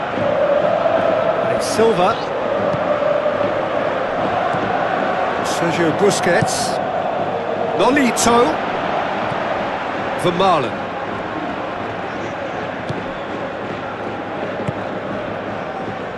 And it's Silva. Sergio Busquets. Nolito. Vermaelen.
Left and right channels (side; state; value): both; identical; correlation 1.00